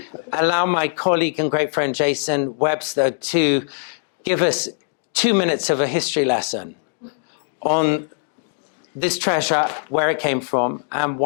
allow my colleague and great friend Jason Webster to give us 2 minutes of a history lesson on this treasure, where it came from, and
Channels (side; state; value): right; silent; digital silence